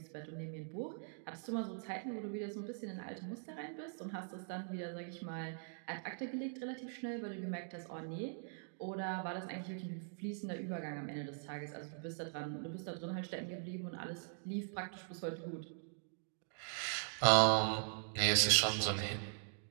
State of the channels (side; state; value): left; silent; digital silence